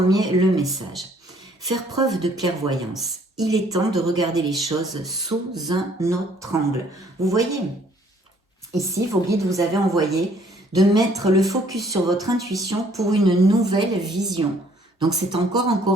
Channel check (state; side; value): normal; both; correlation 0.61